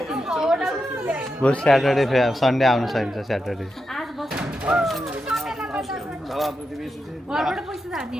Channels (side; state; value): both; normal; correlation 0.87